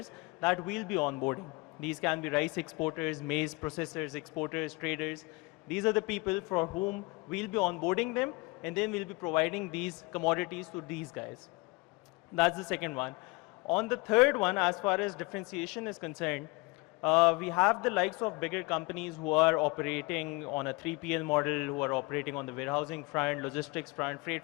that we'll be onboarding. These can be rice exporters, maize processors, exporters, traders. These are the people for whom we'll be onboarding them, and then we'll be providing these commodities to these guys. That's the second one. On the third one, as far as differentiation is concerned, we have the likes of bigger companies who are operating on a 3PL model, who are operating on the warehousing front, logistics front, freight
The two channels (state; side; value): quieter; right; 26.2 dB